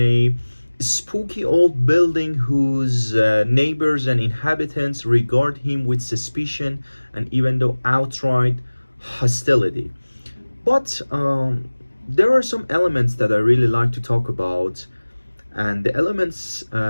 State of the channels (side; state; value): both; inverted; correlation -1.00